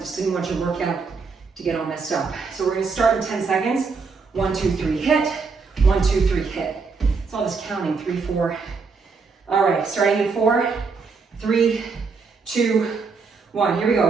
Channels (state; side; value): quieter; left; 4.8 dB